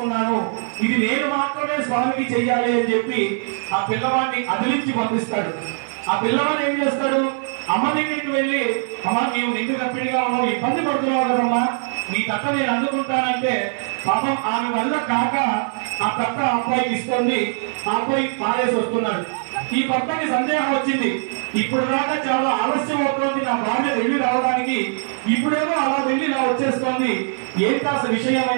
ఇది నేను మాత్రమే స్వామికి చెయ్యాలి అని చెప్పి ఆ పిల్లవాడిని అదిలించి పంపిస్తాడు. ఆ పిల్లవాడు ఏం చేస్తాడు, అమ్మ దగ్గరికి వెళ్ళి అమ్మ నీవు నిండు గర్భిణిగా ఉన్నావు, ఇబ్బంది పడుతున్నావు కదమ్మా, నీ తట్ట నేను అందుకుంటానంటే పాపం ఆమె వల్ల కాక ఆ తట్ట అబ్బాయికి ఇస్తుంది. ఆ అబ్బాయి పారేసి వస్తున్నాడు. ఈ భర్తకి సందేహం వచ్చింది, ఇప్పుడు దాకా చాలా ఆలస్యం అవుతోంది నా భార్య వెళ్ళి రావడానికి, ఇప్పుడేమో అలా వెళ్ళి ఇలా వచ్చేస్తోంది, ఏంటి అసలు విషయం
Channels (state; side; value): silent; left; digital silence